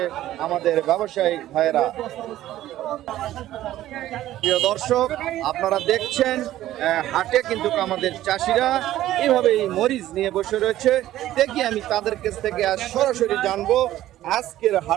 আমাদের ব্যবসায়িক ভাইয়েরা। প্রিয় দর্শক, আপনারা দেখছেন হাটে কিন্তু আমাদের চাষিরা এইভাবে এই মরিচ নিয়ে বসে রয়েছে। দেখি আমি তাদের কাছ থেকে আজ সরাসরি জানবো আজকের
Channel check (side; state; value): left; quieter; 13.9 dB